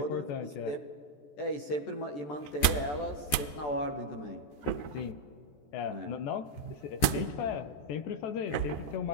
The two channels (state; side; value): late; right; 14 ms